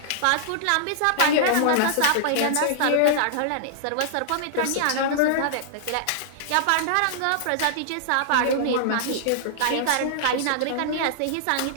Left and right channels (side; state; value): both; different; correlation -0.01